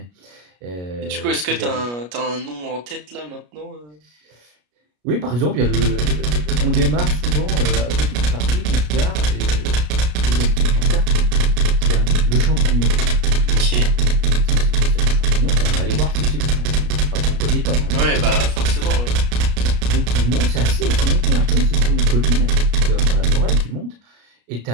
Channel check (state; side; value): late; left; 33 ms